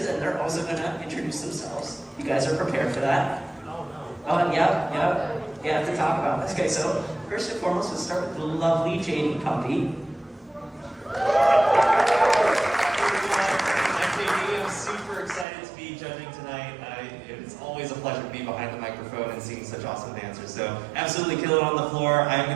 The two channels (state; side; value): drops out; left; at 15.5 s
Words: and they're also going to introduce themselves. You guys are prepared for that? Oh, yeah, to talk about this. Okay, so first and foremost, we'll start with the lovely JD Puppy. I'm JD. I'm super excited to be judging tonight. It's always a pleasure to be behind the microphone and seeing such awesome dancers. So absolutely kill it on the floor. I'm